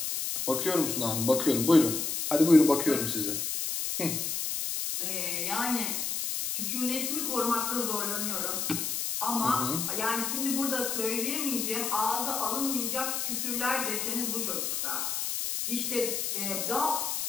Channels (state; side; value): noise; left; hiss, 1 dB below the sound